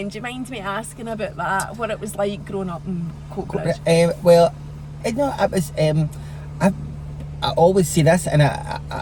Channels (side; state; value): both; identical; correlation 1.00